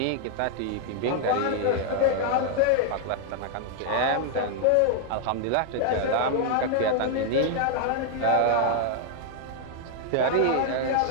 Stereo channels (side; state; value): both; different; correlation -0.01